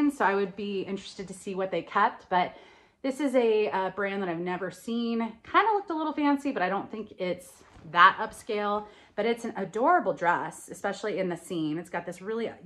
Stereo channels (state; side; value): identical; both; correlation 1.00